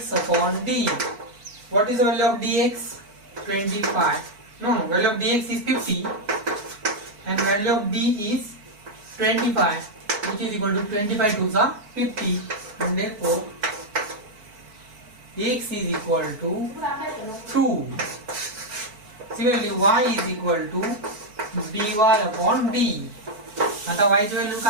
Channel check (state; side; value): late; left; 4.5 ms